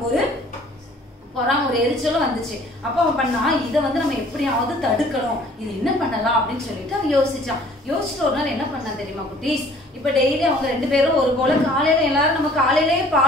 ஒரு ஒரு எரிச்சலும் வந்துச்சு. அப்ப அவன் பண்ணா, இதை வந்து நம்ம எப்படியாவது தடுக்கணும், இது என்ன பண்ணலாம் அப்படின்னு சொல்லிட்டு அவன் யோசிச்சுட்டு ஒரு நாள் என்ன பண்ணான் தெரியுமா குட்டீஸ், இப்ப டெய்லி அவங்க 2 பேரும் ஒரு போல காலையில எல்லாரும் நம்ம காலையிலேயே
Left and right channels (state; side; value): normal; both; correlation 0.54